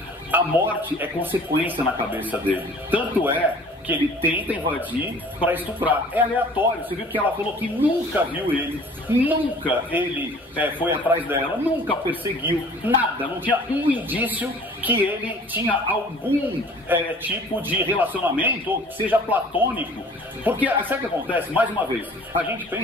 A morte é consequência na cabeça dele. Tanto é que ele tenta invadir para estuprar. É aleatório. Você viu que ela falou que nunca viu ele, nunca ele foi atrás dela, nunca perseguiu, nada. Não tinha um indício que ele tinha algum tipo de relacionamento, ou seja platônico. Porque, sabe o que acontece? Mais uma vez, a gente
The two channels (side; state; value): both; normal; correlation 0.49